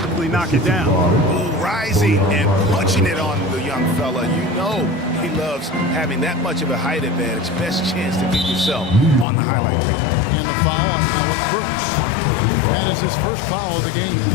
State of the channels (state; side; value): drops out; right; at 9.2 s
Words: knock it down. Ooh, rising and punching it on the young fella. You know he loves having that much of a height advantage. Best chance to get yourself on the highlight reel. And the foul on Alec Burks. That is his first foul of the game.